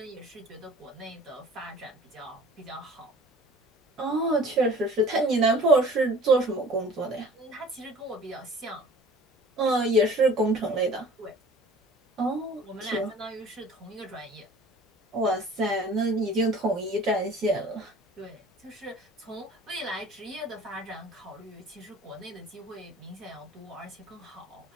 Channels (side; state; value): both; normal; correlation 0.47